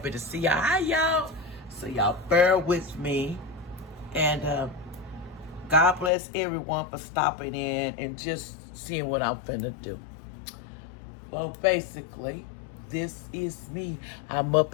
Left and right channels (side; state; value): right; drops out; at 6.1 s